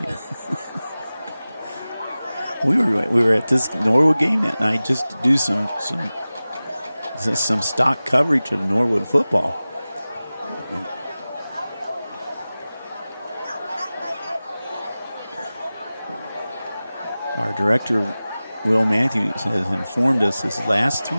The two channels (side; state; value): both; inverted; correlation -0.97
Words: We were at this Norwood game that night just to do some stock coverage of Norwood football. And our director, Will Matthews, has informed us his last